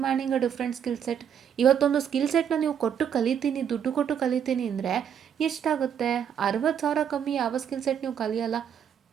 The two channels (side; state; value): left; quieter; 8.4 dB